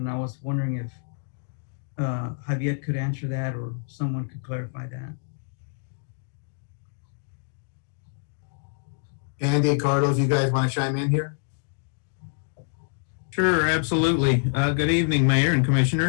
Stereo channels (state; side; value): silent; right; digital silence